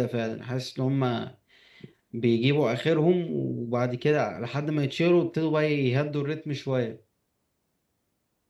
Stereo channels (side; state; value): both; identical; correlation 1.00